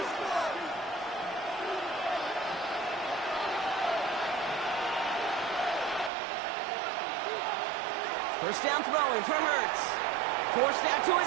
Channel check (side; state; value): left; drops out; at 6.1 s